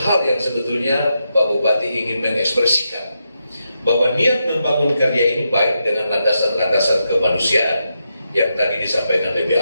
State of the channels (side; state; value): both; inverted; correlation -0.85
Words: yang sebetulnya Pak Bupati ingin mengekspresikan bahwa niat membangun karya ini baik dengan landasan-landasan kemanusiaan yang tadi disampaikan